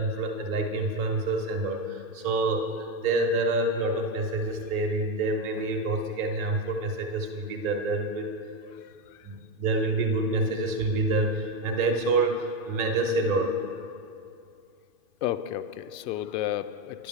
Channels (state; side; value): late; left; 2.5 ms